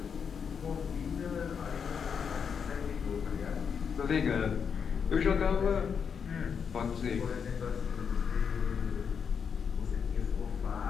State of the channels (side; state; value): right; quieter; 6.7 dB